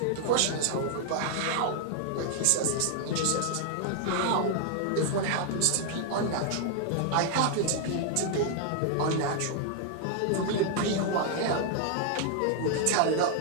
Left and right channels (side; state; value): both; different; correlation 0.00